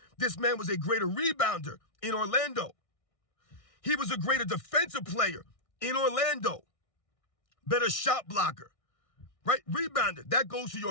this man was a greater rebounder in Orlando. He was a greater defensive player in Orlando. Better shot blocker, right? Rebounder, that goes to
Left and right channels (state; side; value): late; right; 1.6 ms